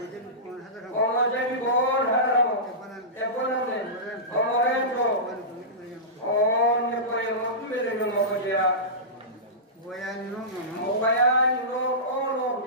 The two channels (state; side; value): normal; both; correlation -0.19